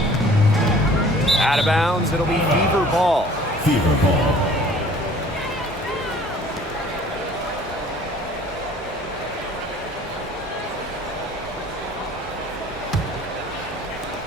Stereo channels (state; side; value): normal; both; correlation 0.51